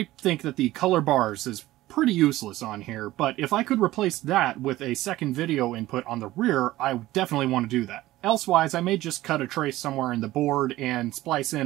think that the color bars is pretty useless on here, but if I could replace that with a second video input on the rear, I would definitely want to do that. Elsewise, I may just cut a trace somewhere in the board and splice in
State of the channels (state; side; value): quieter; left; 16.5 dB